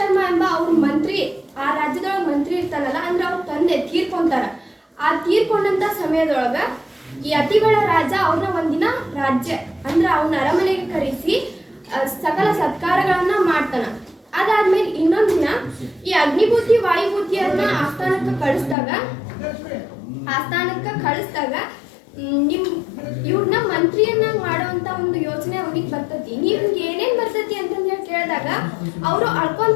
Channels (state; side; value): drops out; right; at 18.8 s